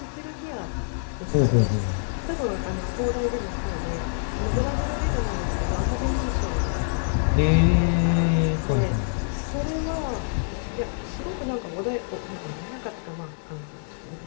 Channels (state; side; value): silent; right; digital silence